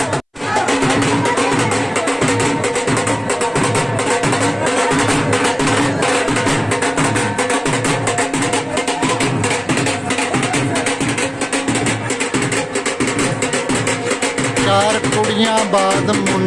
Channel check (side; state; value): both; identical; correlation 1.00